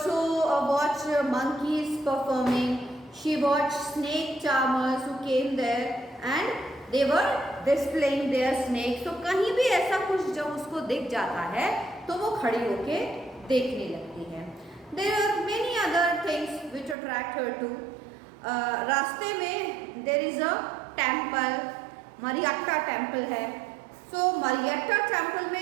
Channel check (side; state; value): left; drops out; at 16.9 s